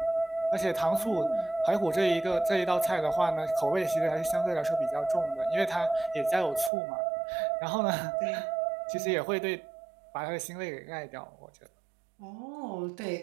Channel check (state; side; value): drops out; left; at 6.7 s